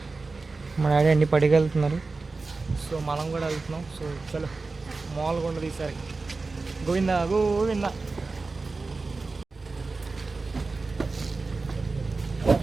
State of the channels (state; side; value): quieter; left; 3.8 dB